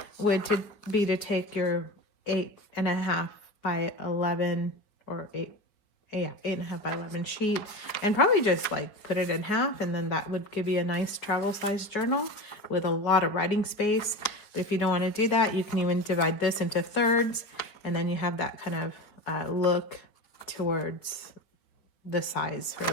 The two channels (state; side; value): late; right; 5.0 ms